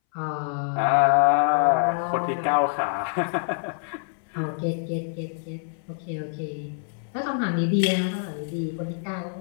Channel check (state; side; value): silent; right; 61 dB below the other